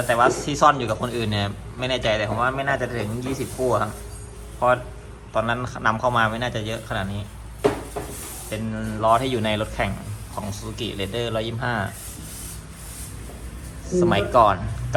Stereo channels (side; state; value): both; identical; correlation 1.00